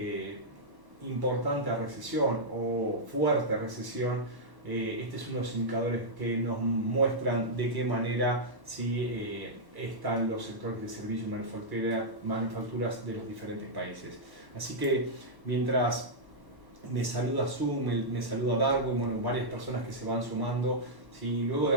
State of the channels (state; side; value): late; left; 1.1 ms